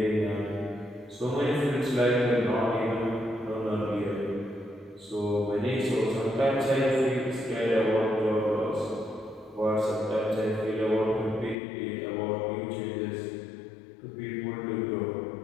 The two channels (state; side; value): drops out; right; at 11.6 s